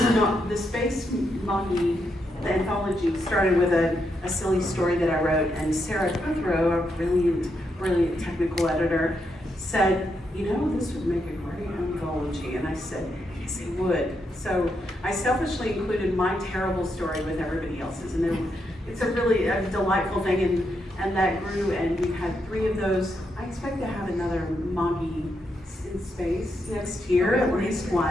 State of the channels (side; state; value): both; normal; correlation 0.81